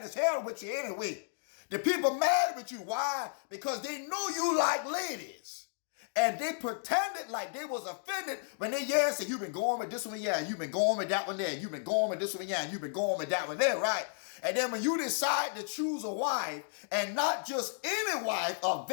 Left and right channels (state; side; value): silent; right; digital silence